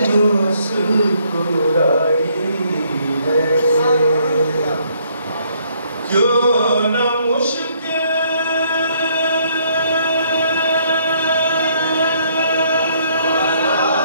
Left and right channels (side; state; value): both; inverted; correlation -0.67